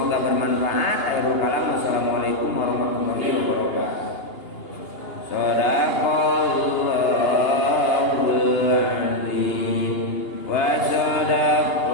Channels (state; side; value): late; right; 2.8 ms